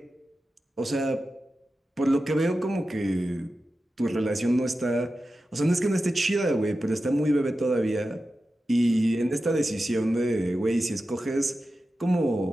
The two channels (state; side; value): normal; both; correlation 0.92